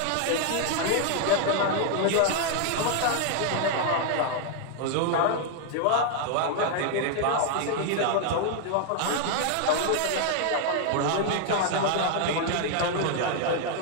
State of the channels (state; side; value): different; both; correlation 0.00